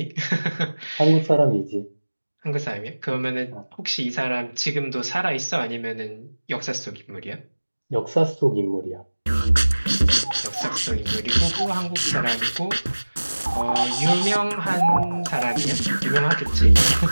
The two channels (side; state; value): both; inverted; correlation -1.00